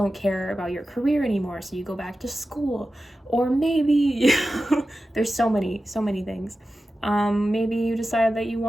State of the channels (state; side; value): normal; both; correlation 0.93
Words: care about your career anymore, so you go back to school. Or maybe there's so many things. Maybe you decide that you